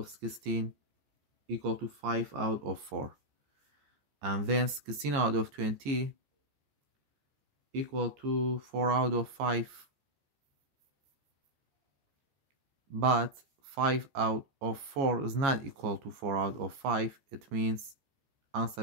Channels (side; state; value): left; late; 14 ms